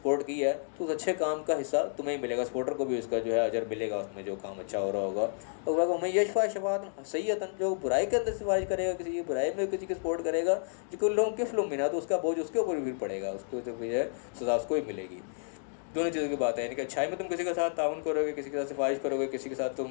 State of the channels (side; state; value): right; silent; digital silence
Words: کی ہے تو اس اچھے کام کا حصہ تمہیں ہی ملے گا، سپورٹر کو بھی اس کا جو ہے اجر ملے گا اس میں جو کام اچھا ہو رہا ہوگا۔ اور میں یشفع شفاعۃ سیئۃ، جو برائی کے اندر سفارش کرے گا، کسی کی برائی میں کسی کی سپورٹ کرے گا، یکن لہ کفل منہا، تو اس کا بوجھ اس کے اوپر بھی پڑے گا، اس کو جو ہے سزا اس کو ہی ملے گی۔ دونوں چیزوں کی بات ہے، یعنی کہ اچھائی میں تم کسی کے ساتھ تعاون کرو گے، کسی کے ساتھ سفارش کرو گے، کسی کے ساتھ